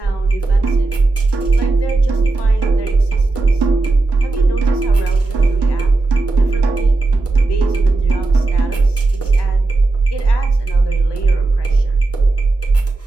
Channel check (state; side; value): quieter; left; 3.3 dB